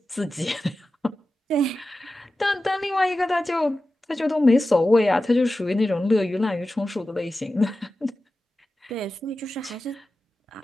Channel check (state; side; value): normal; both; correlation 0.94